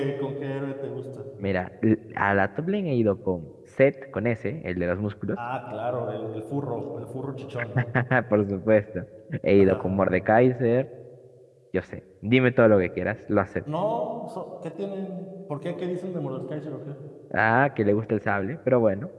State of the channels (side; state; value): both; identical; correlation 1.00